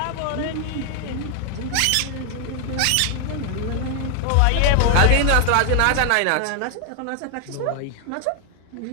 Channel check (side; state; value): both; different; correlation 0.00